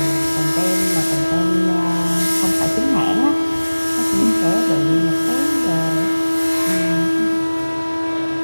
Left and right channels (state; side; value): inverted; both; correlation -1.00